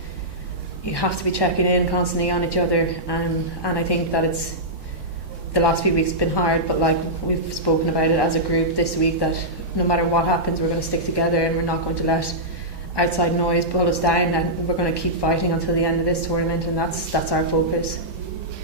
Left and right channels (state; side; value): late; left; 6.4 ms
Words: you have to be checking in constantly on each other, and I think that it's the last few weeks have been hard, but like, we've spoken about it as a group this week, that no matter what happens, we're going to stick together, and we're not going to let outside noise pull us down, and we're going to keep fighting until the end of this tournament, and that's our focus.